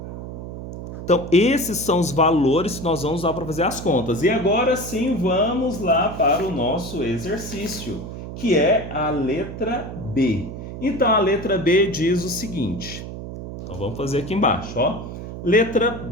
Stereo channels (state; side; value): noise; right; hum, 9 dB below the sound